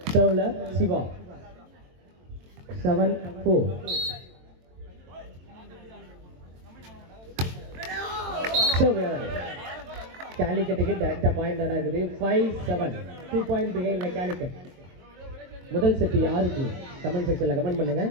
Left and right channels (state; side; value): late; left; 22 ms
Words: சர்வ்ல சிவா 7-4. சர்வ் கேலிக்கட்டுக்கு டைரக்டா பாயிண்ட் ஆகுது. 5-7 2-point பிகைன்ல கேலிக்கட். முதல் செட் யாருக்கு கமெண்ட் செக்ஷன்ல கமெண்ட் பண்ணுங்க.